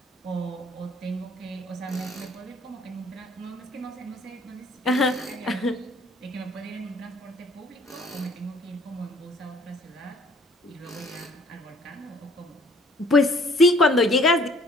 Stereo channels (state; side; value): normal; both; correlation 0.58